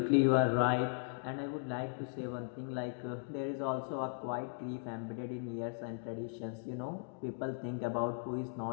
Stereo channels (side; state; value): right; silent; digital silence